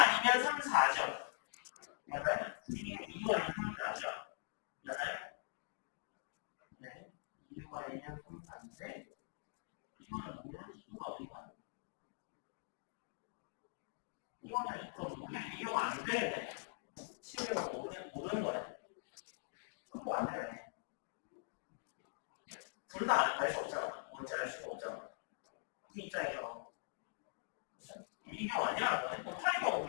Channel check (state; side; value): silent; right; digital silence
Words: 3, 4죠. 맞아요? 12는 2, 6 아니면 3, 4죠. 맞아요? 네. 2, 6 아니면 3, 4인데 이거는 모를 수가 있나? 이거는 그럼 모르겠네. 이 경우 안 되겠네. 쉬운 경우는 모르는 거네. 극복 안 되네. 둘 다 알 수 없잖아. 뭔지 알 수가 없잖아. 이 입장에서. 그쵸? 이 경우 아니라는 거네. 그럼 8의 경우